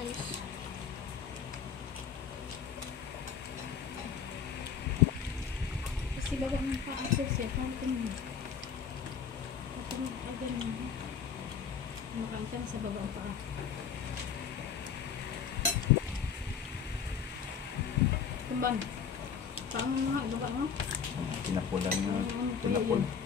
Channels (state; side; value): quieter; right; 6.9 dB